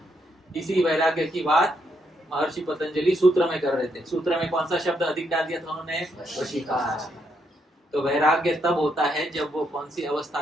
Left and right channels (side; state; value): both; normal; correlation 0.77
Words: इसी वैराग्य की बात महर्षि पतंजलि सूत्र में कर रहे थे। सूत्र में कौन सा शब्द अधिक डाल दिया था उन्होंने? वशीकार। तो वैराग्य तब होता है जब वो कौन सी अवस्था